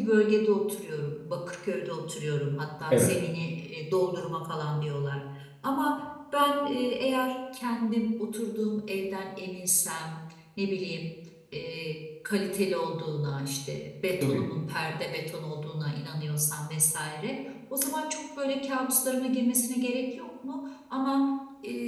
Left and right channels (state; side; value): identical; both; correlation 1.00